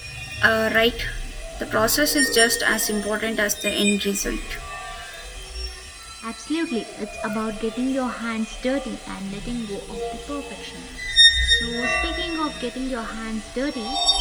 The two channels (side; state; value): both; identical; correlation 1.00